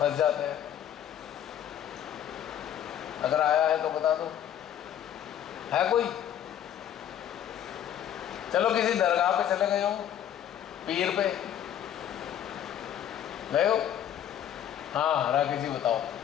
जाते हैं। अगर आया है तो बता दो, है कोई? चलो किसी दरगाह पे चले गए हो, पीर पे गए हो, हाँ राकेश जी बताओ,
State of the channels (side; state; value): right; quieter; 10.3 dB